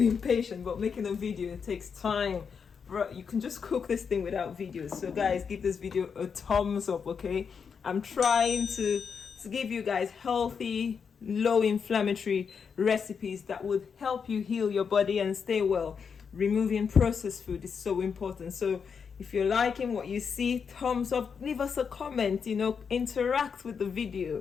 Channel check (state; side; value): quieter; right; 6.3 dB